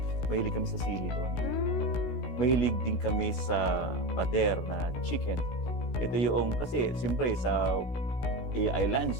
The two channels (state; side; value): late; right; 16 ms